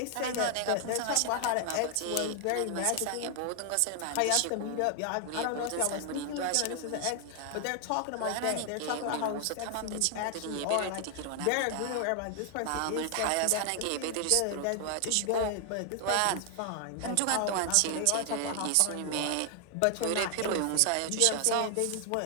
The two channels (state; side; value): different; both; correlation 0.00